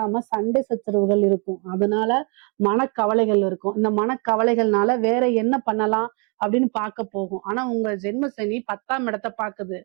சண்டை சச்சரவுகள் இருக்கும். அதனால மனக்கவலைகள் இருக்கும். இந்த மனக்கவலைகள்னால வேற என்ன பண்ணலாம் அப்படின்னு பார்க்க போகும். ஆனா உங்க ஜென்ம சனி 10ஆம் இடத்தை பாக்குது.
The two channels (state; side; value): quieter; left; 35.1 dB